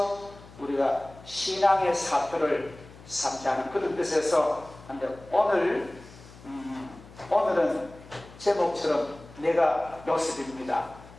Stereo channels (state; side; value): noise; left; hum, 20 dB below the sound